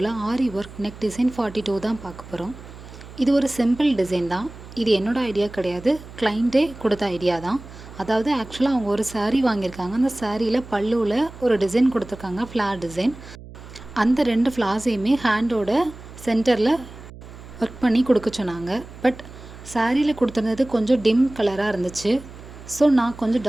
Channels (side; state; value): right; noise; hum, 16 dB below the sound